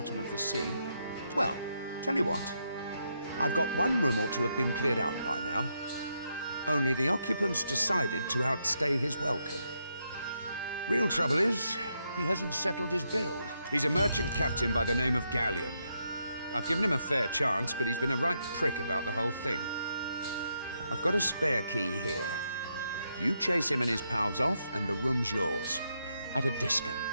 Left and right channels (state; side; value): inverted; both; correlation -0.80